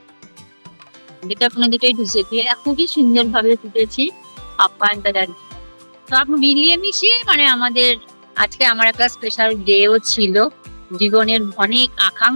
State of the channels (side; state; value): both; inverted; correlation -1.00